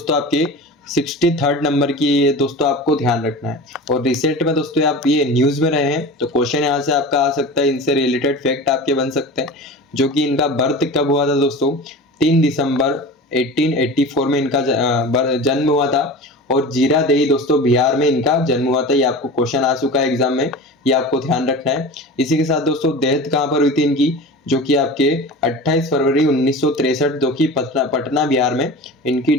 आपके 63rd नंबर की ये दोस्तों आपको ध्यान रखना है। और रिसेंट में दोस्तों आप ये न्यूज़ में रहे हैं तो क्वेश्चन यहाँ से आपका आ सकता है, इनसे रिलेटेड फैक्ट आपके बन सकते हैं। जो कि इनका बर्थ कब हुआ था दोस्तों, 3 दिसंबर 1884 में इनका जन्म हुआ था, और जीरादेई दोस्तों बिहार में इनका जन्म हुआ था। ये आपको क्वेश्चन आ चुका है एग्जाम में, ये आपको ध्यान रखना है। इसी के साथ दोस्तों डेथ कहाँ पर हुई थी इनकी, जो कि आपके 28 फरवरी 1963 जो कि पटना बिहार में इनकी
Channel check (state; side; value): normal; both; correlation 0.33